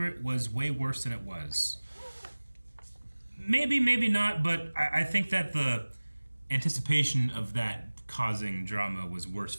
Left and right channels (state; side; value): inverted; both; correlation -1.00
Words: was way worse than it was. Maybe, maybe not, but I think that the anticipation of that causing drama was worse